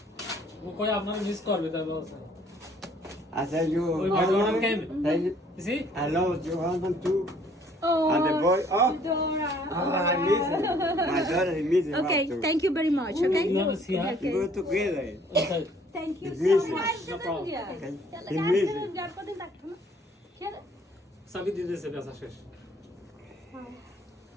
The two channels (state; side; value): normal; both; correlation 0.59